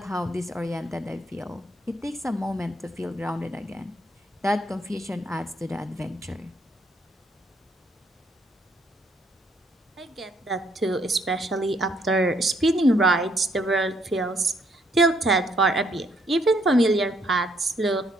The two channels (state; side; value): normal; both; correlation 0.70